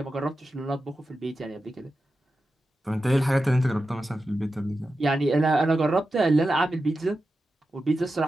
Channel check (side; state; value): both; normal; correlation 0.91